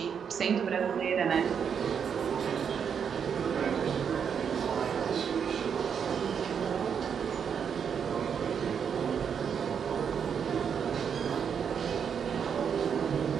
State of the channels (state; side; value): quieter; left; 7.3 dB